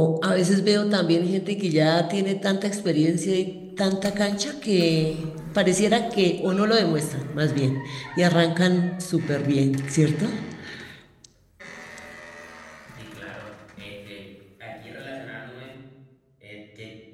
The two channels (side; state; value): both; identical; correlation 1.00